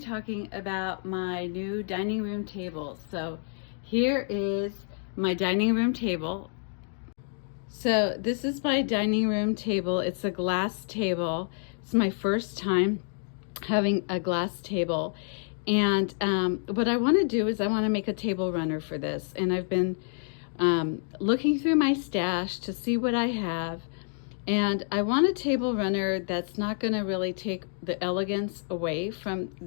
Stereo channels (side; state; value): right; silent; 59 dB below the other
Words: about my new dining room table. So here is my dining room table. So this is my dining room table. It's a glass table. It's my first time having a glass table. And what I want to do is I want to make a table runner for this. And I've been looking through my stash to see what I have. And I want a table runner that's not going to really take the elegance away from